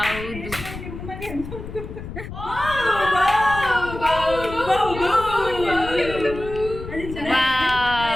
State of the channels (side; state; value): left; noise; rumble, 11 dB below the sound